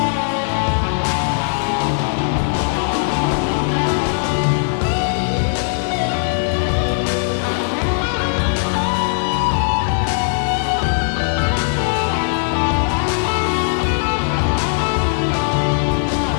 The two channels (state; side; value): silent; right; digital silence